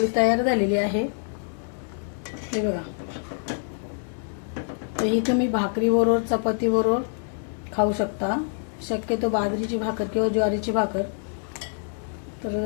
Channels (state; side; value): silent; right; digital silence